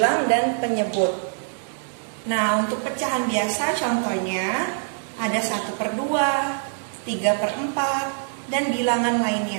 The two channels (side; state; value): left; silent; digital silence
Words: dan penyebut. Nah, untuk pecahan biasa contohnya ada 1/2, 3/4, dan bilangan